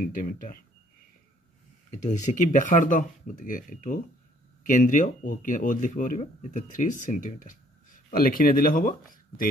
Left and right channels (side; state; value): both; normal; correlation 0.62